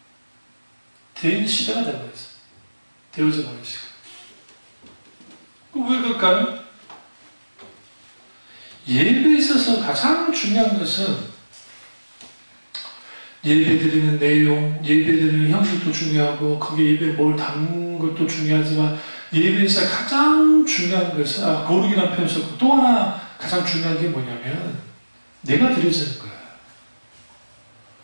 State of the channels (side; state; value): both; inverted; correlation -1.00